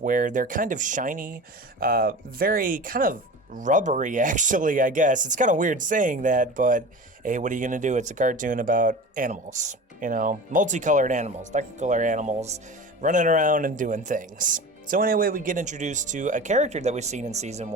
where they're kind of shiny, very kind of rubbery, actually, I guess. It's kind of weird saying that, but hey, what are you going to do? It's a cartoon about animals, you know, multicolored animals, technicolor animals, running around and doing things. So anyway, we get introduced to a character that we've seen in Season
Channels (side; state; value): both; normal; correlation 0.34